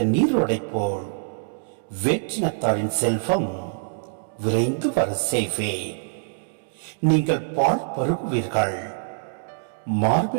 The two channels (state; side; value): silent; left; digital silence